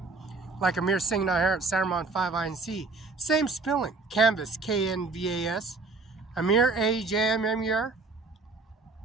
like Ajmer Singh Nijjar at CIMARON5INC. Same spelling. Canvas, K-N-V-A-S. Ajmer, A-J-M-M-E-R.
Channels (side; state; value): left; quieter; 3.7 dB